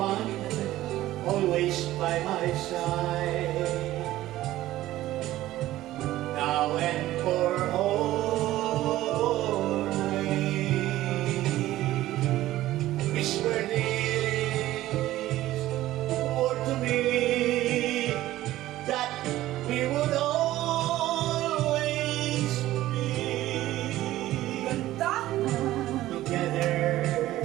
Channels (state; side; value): quieter; left; 15.2 dB